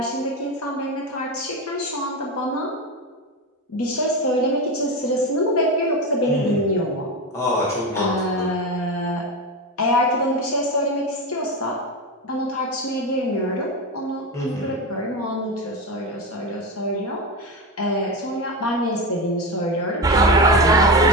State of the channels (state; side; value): normal; both; correlation 0.18